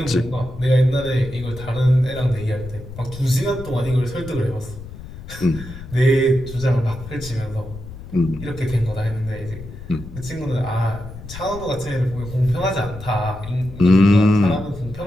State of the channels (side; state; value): left; noise; rumble, 13 dB below the sound